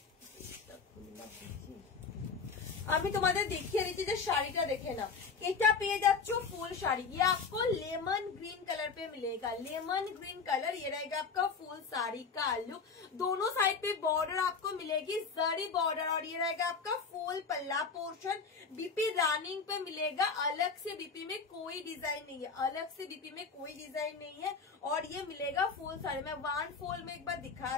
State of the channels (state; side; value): quieter; right; 5.1 dB